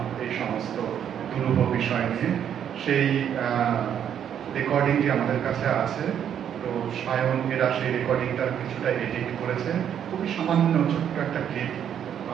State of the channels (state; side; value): quieter; left; 9.2 dB